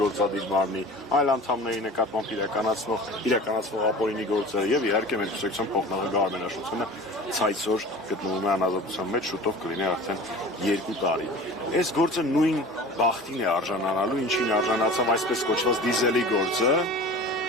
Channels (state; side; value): normal; both; correlation 0.39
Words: գործադիր մարմնի այլ անդամների նկատմամբ իրականացվող ապօրինի գործերը եւ իհարկե մեր կուսակցության փոխնախագահ Արմեն Աշոտյանը ցայցօր գտնվում է անազատության մեջ, շուտով կլինի արդեն 2 տարի։ Այս գործը նույն բախտին է արժանանալու, ինչին արժանացավ այսպես կոչված դիզելի գործը,